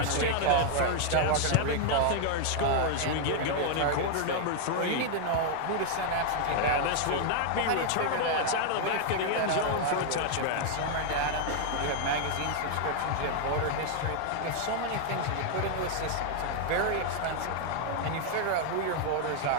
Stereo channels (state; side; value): different; both; correlation 0.00